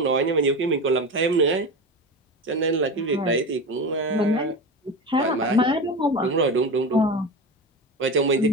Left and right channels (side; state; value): both; normal; correlation 0.25